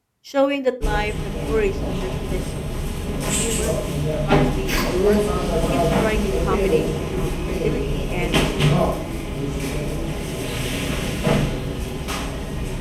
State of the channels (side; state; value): both; identical; correlation 1.00